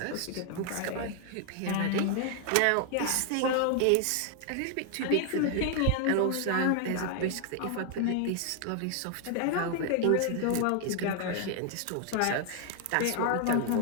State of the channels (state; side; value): different; both; correlation 0.00